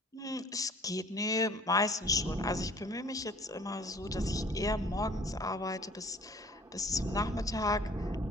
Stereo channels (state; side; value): normal; both; correlation 0.51